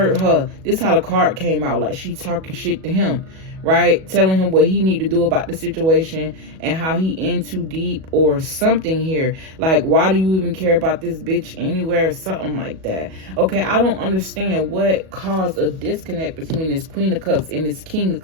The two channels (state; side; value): late; left; 37 ms